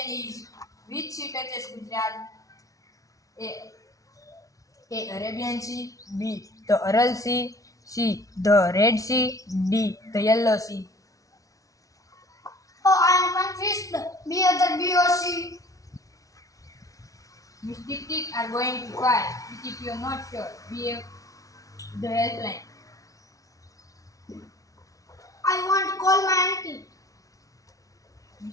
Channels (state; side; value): late; right; 0.17 ms